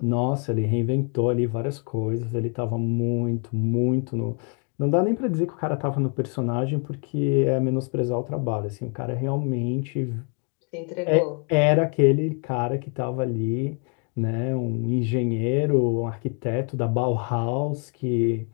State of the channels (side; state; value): right; quieter; 38.4 dB